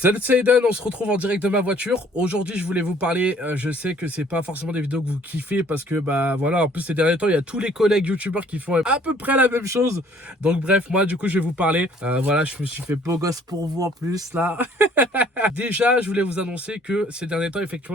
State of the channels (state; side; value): normal; both; correlation 0.58